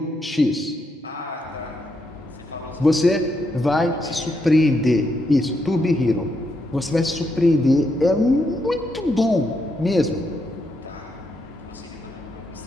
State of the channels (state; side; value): normal; both; correlation 0.80